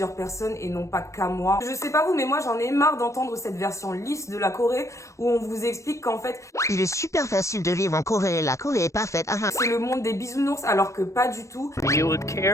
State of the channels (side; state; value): right; late; 0.15 ms